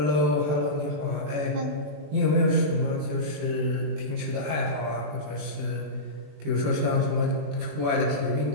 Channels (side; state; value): left; late; 20 ms